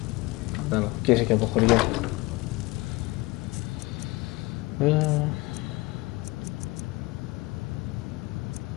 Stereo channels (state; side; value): quieter; right; 22.3 dB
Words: Και είσαι και από χωριό.